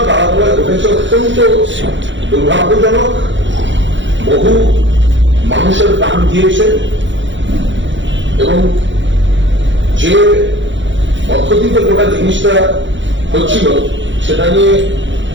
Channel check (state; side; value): late; left; 0.54 ms